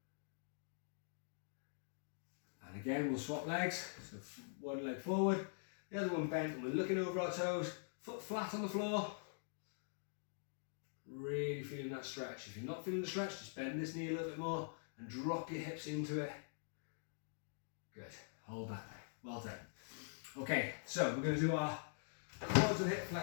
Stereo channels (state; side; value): silent; right; digital silence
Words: And again, we'll swap legs. So one leg forward, the other one bent, and we're looking over our toes, foot flat on the floor. Really feeling that stretch. If you're not feeling the stretch, just bend this knee a little bit more and drop your hips into it. Good. Hold that there. Well done. Okay, so we're going to do our quads and hip